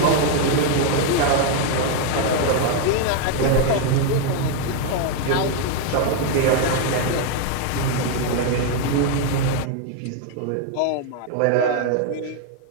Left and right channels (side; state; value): both; different; correlation 0.00